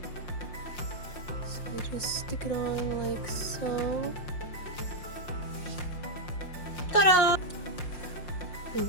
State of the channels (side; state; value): right; late; 5.7 ms